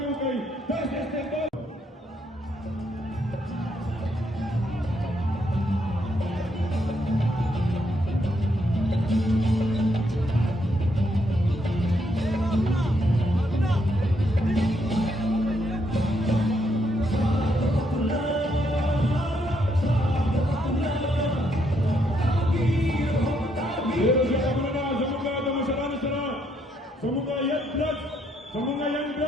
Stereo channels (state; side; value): normal; both; correlation 0.75